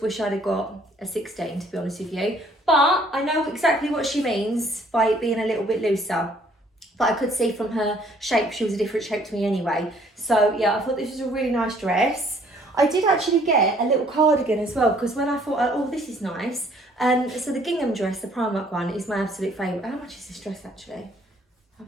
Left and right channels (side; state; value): both; normal; correlation 0.61